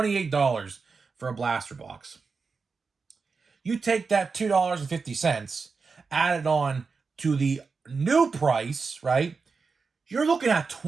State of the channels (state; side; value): quieter; left; 4.8 dB